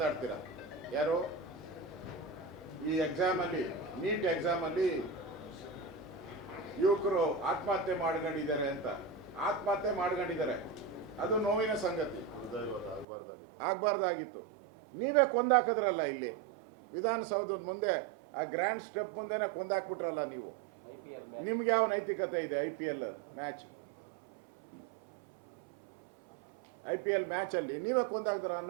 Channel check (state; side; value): drops out; left; at 13.1 s